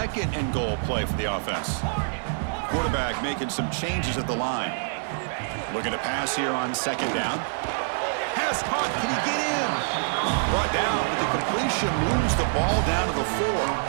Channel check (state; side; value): silent; left; digital silence